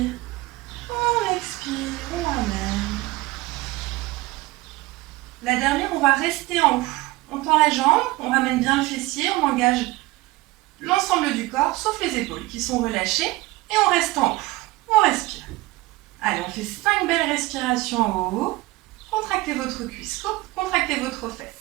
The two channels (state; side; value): quieter; left; 20.2 dB